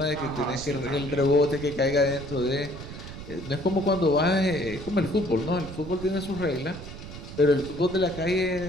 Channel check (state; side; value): noise; right; rumble, 12 dB below the sound